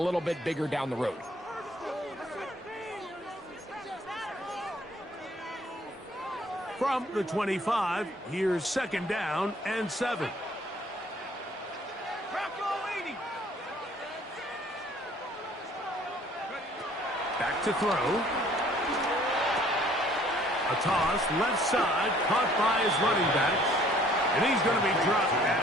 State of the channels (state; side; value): normal; both; correlation 0.58